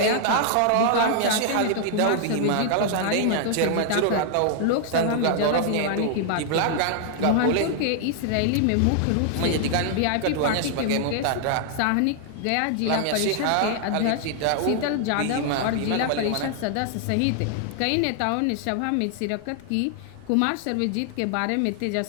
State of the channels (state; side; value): different; both; correlation 0.00